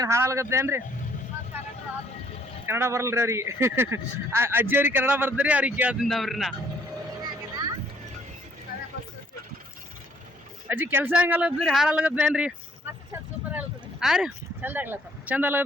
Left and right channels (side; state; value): both; normal; correlation 0.64